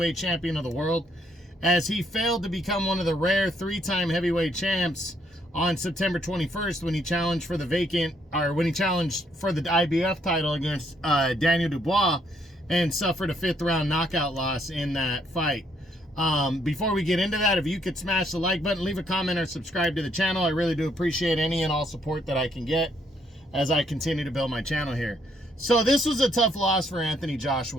champion of the world, as he failed to become one of the rare three-time heavyweight champs on September 21st when he challenged for the IBF title against Daniel Dubois and suffered a fifth-round knockout loss in that fight. Before we get into that, if you could smash the like button, leave a comment, or subscribe to the channel. I really do appreciate any and all support that I can get as I continue to build my channel here. So this was a tough loss for Anthony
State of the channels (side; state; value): both; normal; correlation 0.71